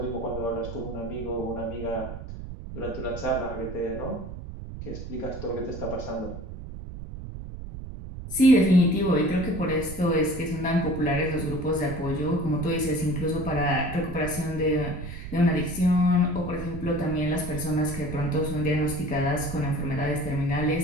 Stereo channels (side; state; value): right; noise; rumble, 10 dB below the sound